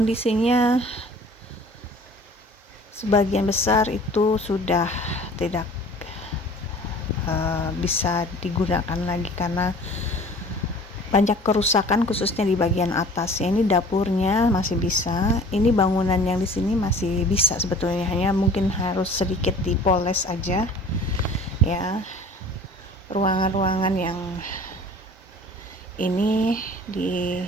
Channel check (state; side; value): normal; both; correlation 0.46